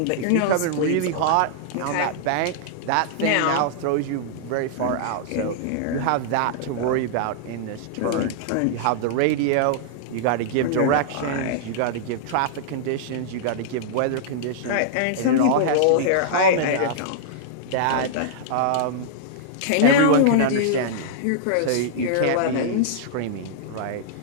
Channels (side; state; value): both; different; correlation -0.01